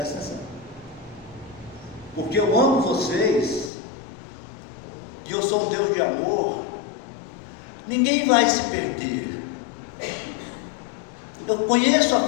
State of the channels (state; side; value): drops out; right; at 3.7 s